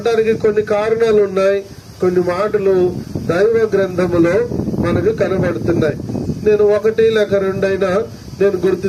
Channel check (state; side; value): identical; both; correlation 1.00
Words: కొన్ని కారణాలు ఉన్నాయి. కొన్ని మాటలు దైవ గ్రంథములో మనకు కనబడుతున్నాయి. నేను ఒకటి లేక రెండైనా నేను గుర్తు